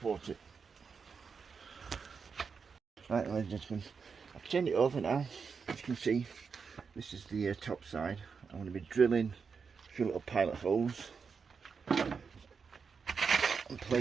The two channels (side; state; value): left; quieter; 5.7 dB